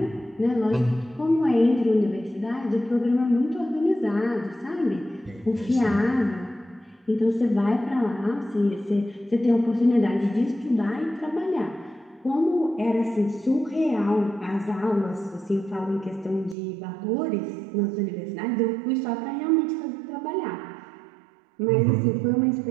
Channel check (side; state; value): left; drops out; at 16.6 s